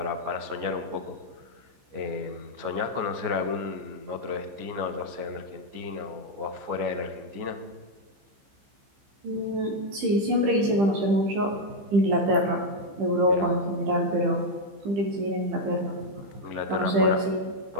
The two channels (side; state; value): left; late; 15 ms